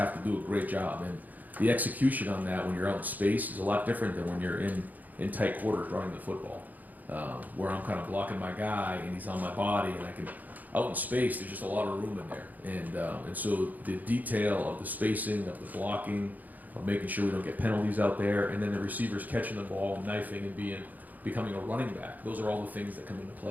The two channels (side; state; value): left; late; 0.082 ms